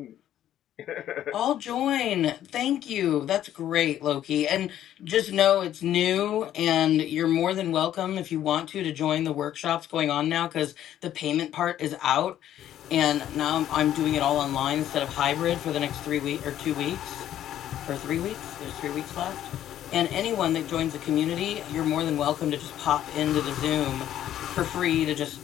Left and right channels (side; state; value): right; quieter; 11.6 dB